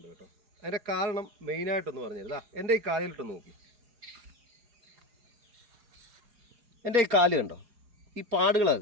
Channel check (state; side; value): late; left; 4.3 ms